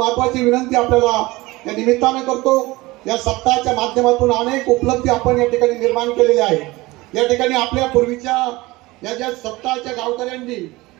विनंती आपल्याला या निमित्ताने करतो, या सप्ताहाच्या माध्यमातून अनेक उपलब्धी आपण या ठिकाणी निर्माण केलेल्या आहे. या ठिकाणी आपल्या पूर्वीच्या या ज्या सप्ताहाच्या गावकऱ्यांनी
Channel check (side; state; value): left; quieter; 20.7 dB